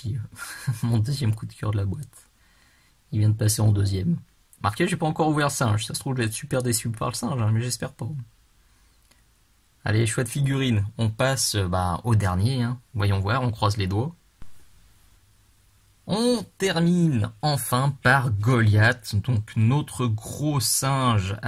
Mon deuxième coup de cœur de la boîte. Il vient de passer en deuxième. Marqué, j'ai pas encore ouvert le singe. Ça se trouve, je vais être super déçu par le singe, hein, mais j'espère pas. Allez, chouette figurine. On passe au dernier. Hein. Voyons voir, on croise les doigts. On termine enfin par Goliath, donc notre gros singe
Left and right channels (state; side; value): identical; both; correlation 1.00